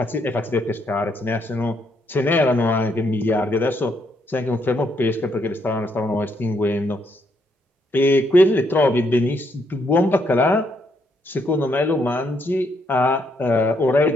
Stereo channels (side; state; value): both; normal; correlation 0.74